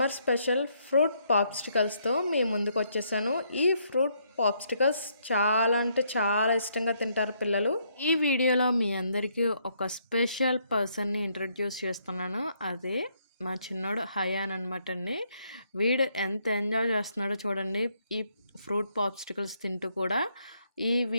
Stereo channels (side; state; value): both; inverted; correlation -0.72